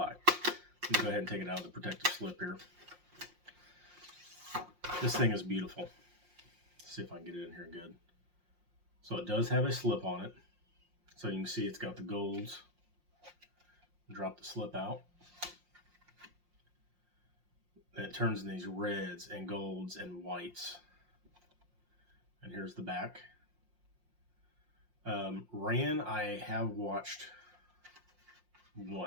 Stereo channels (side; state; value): left; late; 5.6 ms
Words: Let me go ahead and take it out of the protective slip here. This thing is beautiful. Let's see if I can get it in here good. So it does have a slip on it. So you can see it's got the golds. Drop the slip out. And it turns in these reds and golds and whites. And here's the back. Ran I have watched